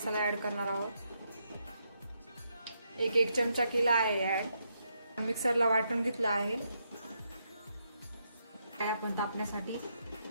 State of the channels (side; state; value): both; inverted; correlation -0.80